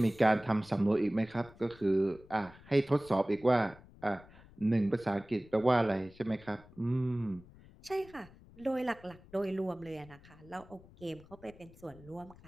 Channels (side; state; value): left; noise; rumble, 22 dB below the sound